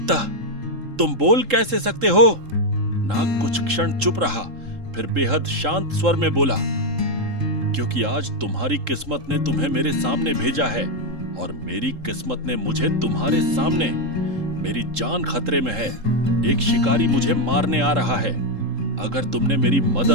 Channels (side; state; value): left; late; 3.7 ms